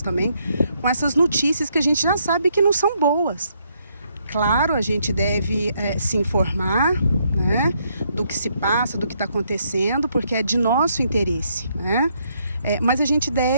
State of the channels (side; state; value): both; inverted; correlation -0.73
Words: também, com essas notícias que a gente já sabe que não são boas. Claro, a gente deve se informar, né, do que se passa, do que está acontecendo, porque é de nosso interesse, né? Mas a gente